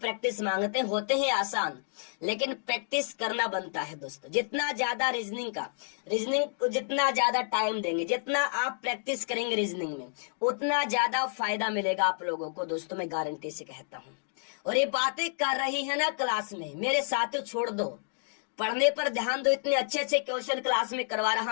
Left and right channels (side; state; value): right; silent; digital silence